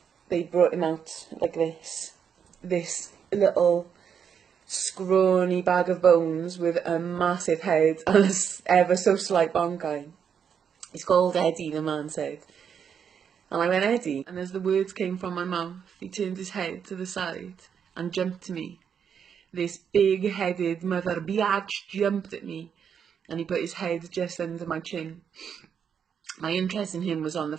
they brought him out like this little scrawny bag of bones with a massive head and a ever so slight bonkai. He's called Eddie, the man said. And I went, Eddie, and as the words came from my mouth, he turned his head to the side and jumped to me. This big-headed mother biatch jumped at me, and he put his head just under my chin. My interest in him was on the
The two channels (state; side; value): quieter; left; 7.5 dB